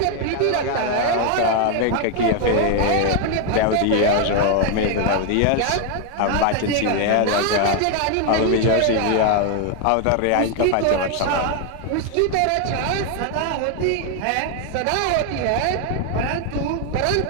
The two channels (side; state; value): both; different; correlation 0.01